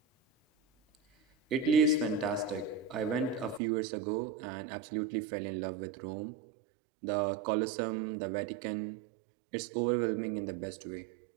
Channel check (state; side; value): drops out; left; at 3.6 s